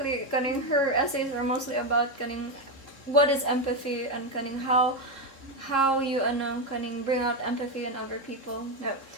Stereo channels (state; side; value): late; right; 3.7 ms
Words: Cunning, her essays are mostly about Cunning, what is empathy and Cunning, how you Cunning bring out empathy in other people. No,